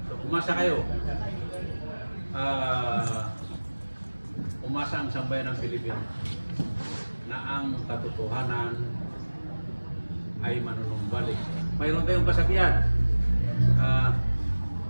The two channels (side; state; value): both; inverted; correlation -1.00